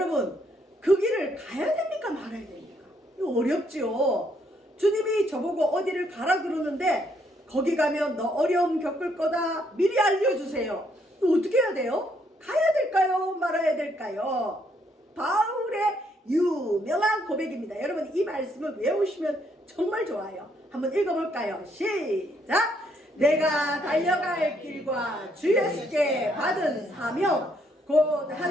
그 길을 가야 됩니까 말아야 됩니까? 이거 어렵지요. 주님이 저보고 어디를 가라 그러는데 거기 가면 너 어려움 겪을 거다 미리 알려주세요. 이거 어떻게 해야 돼요? 가야 될까요? 말아야 될까요? 바울의 유명한 고백입니다. 여러분 이 말씀을 외우시면 정말 좋아요. 한번 읽어볼까요? 시작! 내가 달려갈 길과 주 예수께 받은 사명 곧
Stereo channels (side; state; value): both; normal; correlation 0.71